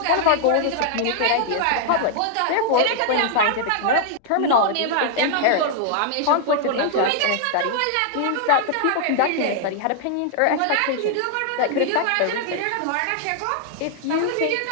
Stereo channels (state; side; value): different; both; correlation -0.01